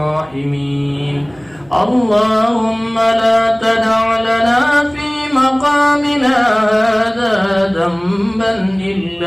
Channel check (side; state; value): right; noise; hum, 28 dB below the sound